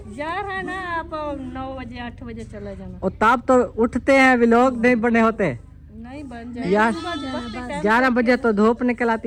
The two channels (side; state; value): both; identical; correlation 1.00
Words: जा रहा है ना, आप 9 बजे 8 बजे चले जाना। और तब तो उठते हैं, भी लोग नहीं बने होते नहीं बन जाए यार। 11 बजे तो धूप निकल